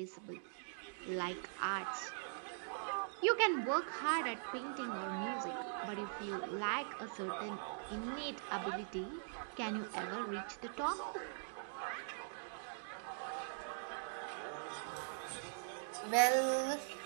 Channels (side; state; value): left; silent; digital silence